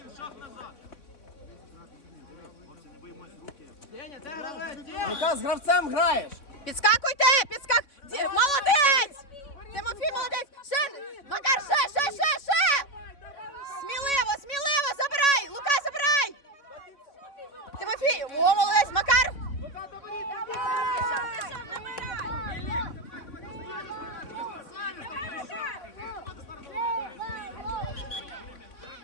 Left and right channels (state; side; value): late; right; 3.6 ms